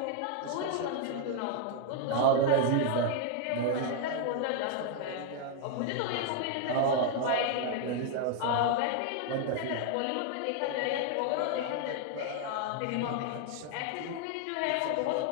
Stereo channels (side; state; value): both; different; correlation 0.00